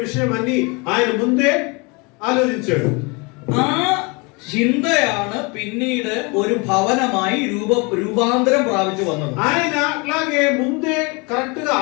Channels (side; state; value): right; quieter; 29.1 dB